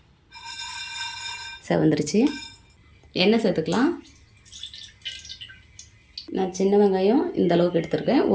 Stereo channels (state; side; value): identical; both; correlation 1.00